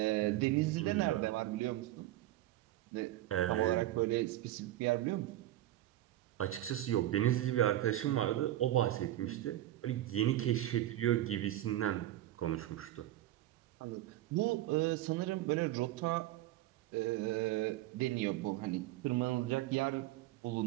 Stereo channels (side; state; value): left; quieter; 14.7 dB